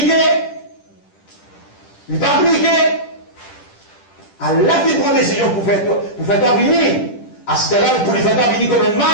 Il n'est pas appliqué. Allah qui prend décision pour faire toi venir. À ce là pour lui faire toi venir comme un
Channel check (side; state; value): right; late; 10 ms